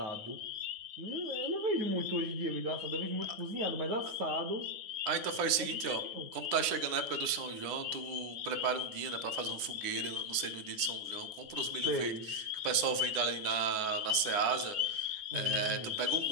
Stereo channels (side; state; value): left; late; 9.3 ms